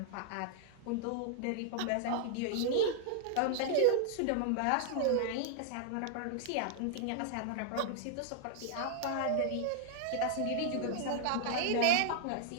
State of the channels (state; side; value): different; both; correlation -0.01